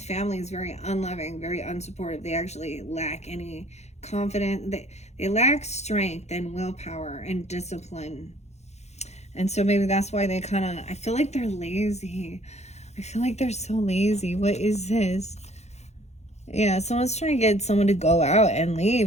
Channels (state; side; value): late; right; 0.32 ms